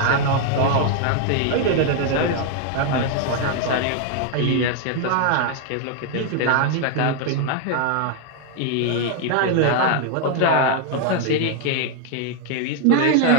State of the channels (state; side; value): different; both; correlation 0.00